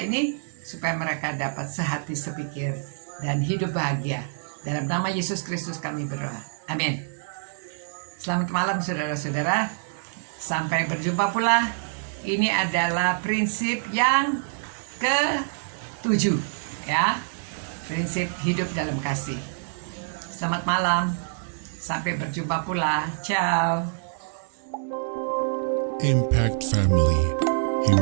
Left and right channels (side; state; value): left; silent; 61 dB below the other